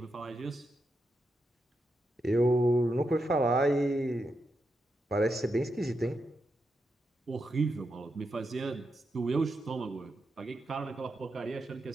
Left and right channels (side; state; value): both; normal; correlation 0.85